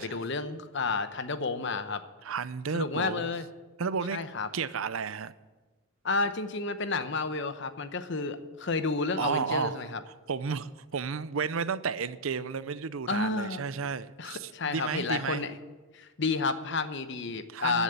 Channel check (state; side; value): normal; both; correlation -0.11